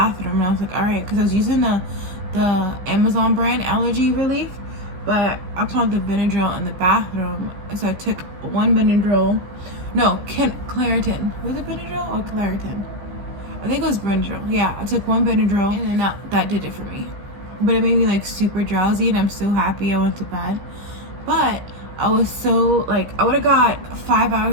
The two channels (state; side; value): late; left; 15 ms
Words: and I was like, all right, because I was using the Amazon brand allergy relief, but I found the Benadryl in the bathroom. So I took 1 Benadryl. No, Claritin. Was it Benadryl or Claritin? I think it was Benadryl. Yeah, I took 1 Benadryl, and then that did it for me. But it made me like super drowsy, and I'm so happy I went to bed. But I was so, like, I would have got 5